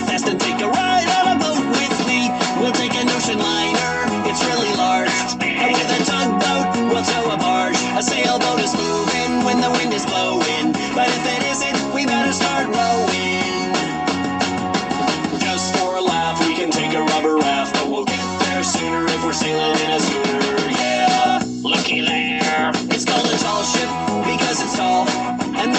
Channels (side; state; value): both; identical; correlation 1.00